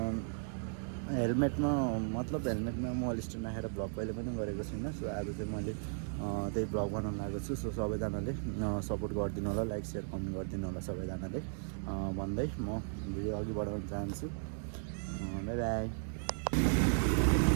हेलमेटमा म अल स्ट्यान्ड राखेर ब्लग कहिले पनि गरेको छुइनँ। सो आज चाहिँ मैले त्यही ब्लग बनाउन लागेको छु। सो सबैजनाले सपोर्ट गरिदिनु होला, लाइक सेयर कमेन्ट गरिदिनु होला सबैजनाले भन्दै म भिडियो अघि बढाउन चाहन्छु। By by.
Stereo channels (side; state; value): left; silent; digital silence